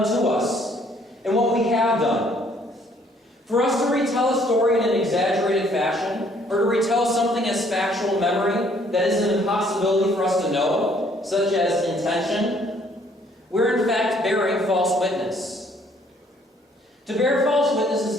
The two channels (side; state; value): both; normal; correlation 0.63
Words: to us and what we have done. For us to retell a story in an exaggerated fashion, or to retell something as factual memory that is an impossibility for us to know, such as intention, we're in fact bearing false witness. To bear false witness